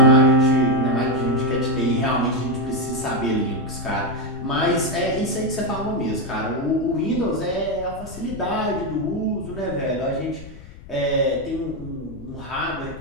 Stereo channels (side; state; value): left; noise; rumble, 16 dB below the sound